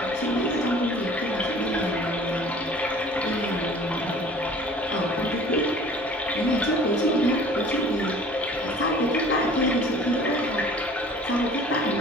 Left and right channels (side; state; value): both; normal; correlation 0.48